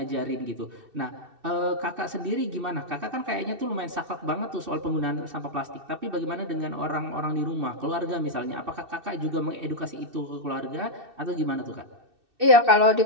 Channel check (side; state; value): left; late; 2.6 ms